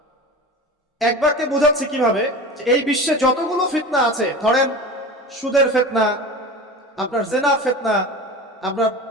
এক বাক্যে বোঝাচ্ছি কিভাবে, যে এই বিশ্বে যতগুলো ফিতনা আছে, ধরেন সুদের ফিতনা, আপনার জেনার ফিতনা, আপনার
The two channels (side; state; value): both; normal; correlation 0.32